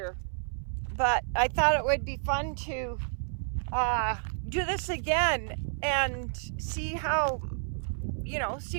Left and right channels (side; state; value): left; silent; 58 dB below the other